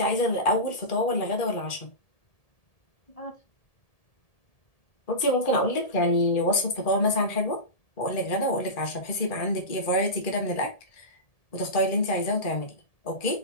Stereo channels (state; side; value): late; right; 1.7 ms